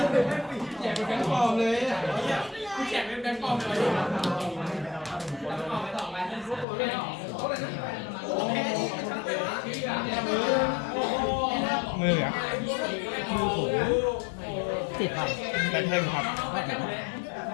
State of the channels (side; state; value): right; drops out; at 6.7 s